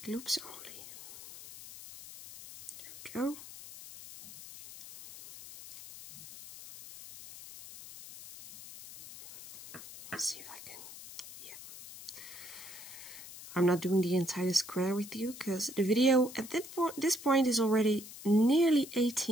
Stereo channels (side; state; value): left; noise; hiss, 15 dB below the sound